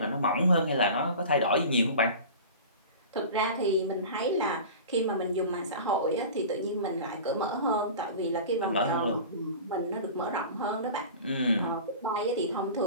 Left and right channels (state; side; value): inverted; both; correlation -0.36